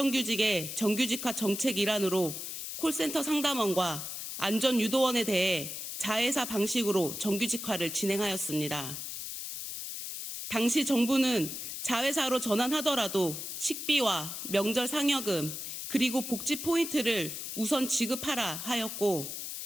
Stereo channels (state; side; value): noise; left; hiss, 6 dB below the sound